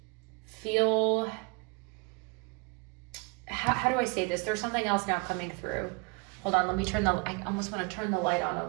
feel, how do I say this? There's something else now coming through. Hold on, let me I almost want to turn the light on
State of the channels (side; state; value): left; quieter; 29.6 dB